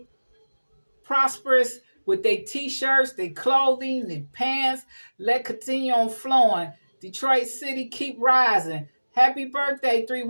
prosperous with their t-shirts, their clothing, their pants. Let continue on flowing. Detroit City, keep rising. Happy birthday,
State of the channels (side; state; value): both; inverted; correlation -1.00